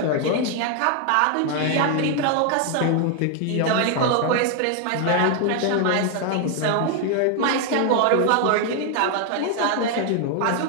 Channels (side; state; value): both; different; correlation 0.00